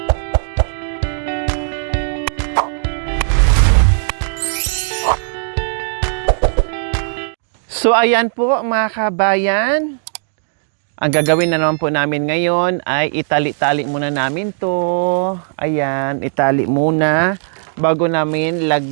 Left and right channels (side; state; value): left; silent; digital silence